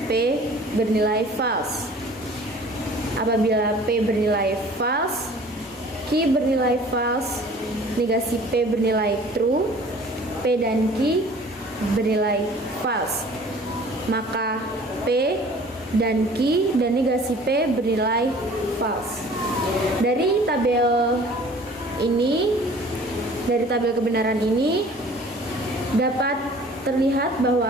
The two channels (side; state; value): both; normal; correlation 0.49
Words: P bernilai false. Apabila P bernilai false, Q bernilai false, negasi P bernilai true, P dan Q bernilai false, maka P dan Q dan negasi P bernilai false. Dari tabel kebenaran ini dapat terlihat